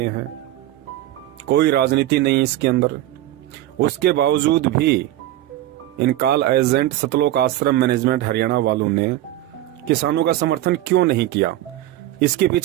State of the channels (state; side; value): quieter; left; 14.5 dB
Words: हैं, कोई राजनीति नहीं इसके अंदर। उसके बावजूद भी इन कॉल एजेंट सतलोक आश्रम मैनेजमेंट हरियाणा वालों ने किसानों का समर्थन क्यों नहीं किया? इसके